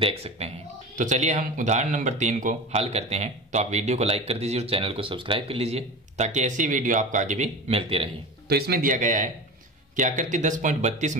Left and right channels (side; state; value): both; normal; correlation 0.29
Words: सकते हैं। तो चलिए हम उदाहरण नंबर 3 को हल करते हैं। तो आप वीडियो को लाइक कर दीजिए और चैनल को सब्सक्राइब कर लीजिए ताकि ऐसी वीडियो आपको आगे भी मिलती रहे। तो इसमें दिया गया है कि आकृति 10.32